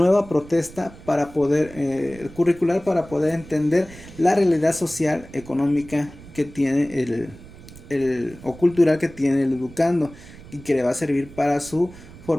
protesta para poder curricular, para poder entender la realidad social, económica que tiene o cultural que tiene el educando y que le va a servir para su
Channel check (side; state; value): right; noise; rumble, 19 dB below the sound